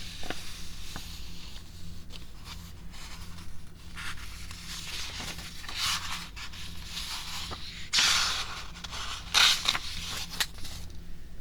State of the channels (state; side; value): identical; both; correlation 1.00